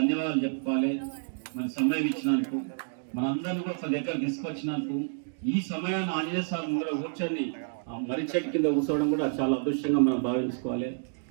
చెప్పుకోవాలి. మరి సమయం ఇచ్చినందుకు, మనందరినీ కూడా ఒక దగ్గర తీసుకొచ్చినందుకు, ఈ సమయాన్ని ఆంజనేయ స్వామి ముందర కూర్చొని ఆ మర్రి చెట్టు కింద కూర్చోవడం కూడా చాలా అదృష్టంగా మనం భావించుకోవాలి.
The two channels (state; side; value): silent; left; digital silence